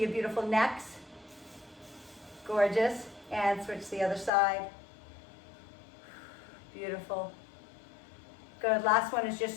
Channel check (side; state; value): right; drops out; at 4.3 s